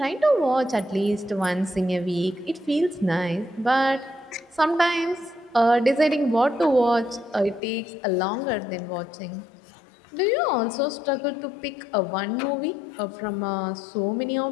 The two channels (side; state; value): right; drops out; at 7.6 s